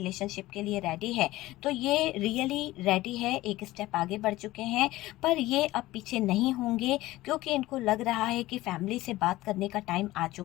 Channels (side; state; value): right; quieter; 17.5 dB